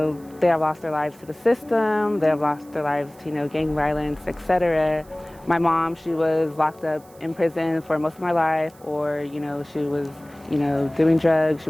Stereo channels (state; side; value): noise; right; hiss, 27 dB below the sound